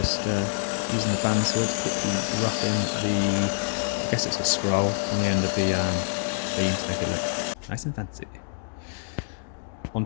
just using the bandsaw to quickly rough in the, I guess it's a scroll on the end of the beam to make it look nice and fancy.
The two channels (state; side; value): silent; right; digital silence